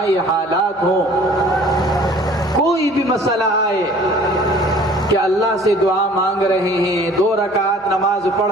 حالات ہوں، کوئی بھی مسئلہ آئے کہ اللہ سے دعا مانگ رہے ہیں، 2 رکعت نماز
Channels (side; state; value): both; normal; correlation 0.50